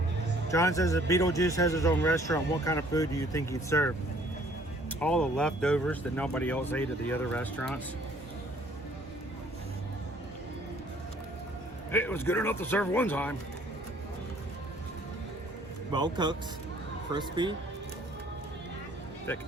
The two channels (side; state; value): both; normal; correlation 0.58